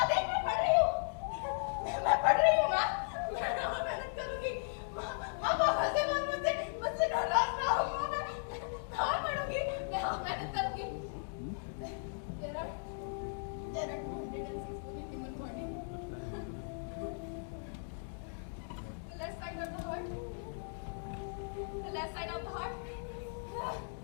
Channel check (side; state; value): right; silent; digital silence